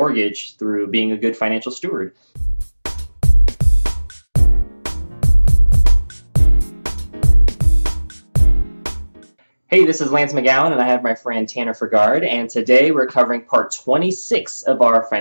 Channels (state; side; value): inverted; both; correlation -1.00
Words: through being a good financial steward. Hey, this is Lance McGowan, and I have my friend Tanner Fergard, and today we're covering part 26 of our